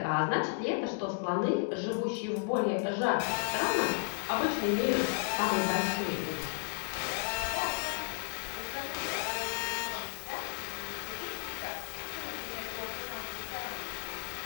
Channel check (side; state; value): right; silent; digital silence